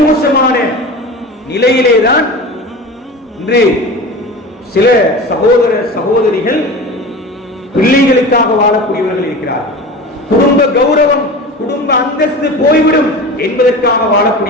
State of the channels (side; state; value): both; normal; correlation 0.32